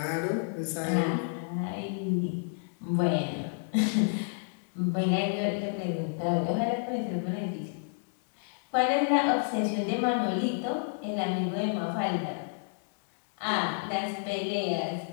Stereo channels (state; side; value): silent; right; digital silence